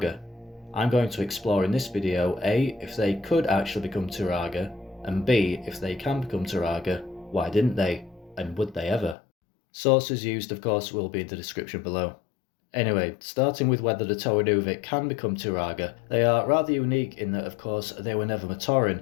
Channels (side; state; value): right; drops out; at 9.2 s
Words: I'm going to explore in this video A, if they could actually become Turaga, and B, if they can become Turaga, why didn't they, and would they ever? Sources used of course will be in the description below. Anyway, starting with whether the Toa Nuva can become Turaga, they are rather unique in that of course they were never